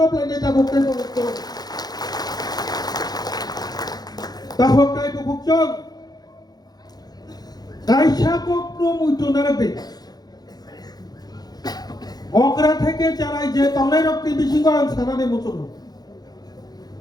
নেতা বকতে বকতে তাহকাই বকচং কাইসা কক্র মুইতো নারবে অকরা থেকে চারাই যে তলাই রক্তি বিশিঙ্গ সানানে মুচন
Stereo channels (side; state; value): right; late; 0.19 ms